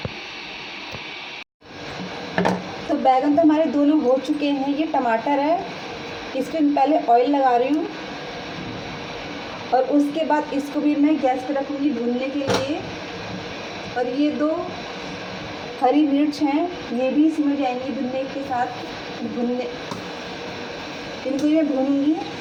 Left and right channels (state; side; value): identical; both; correlation 1.00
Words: तो बैगन तो हमारे दोनों हो चुके हैं। ये टमाटर है, इसमें पहले ऑयल लगा रही हूँ और उसके बाद इसको भी मैं गैस पे रखूँगी भूनने के लिए। और ये 2 हरी मिर्च हैं, ये भी इसमें जाएंगी भुनने के साथ। इनको मैं भूनूँगी।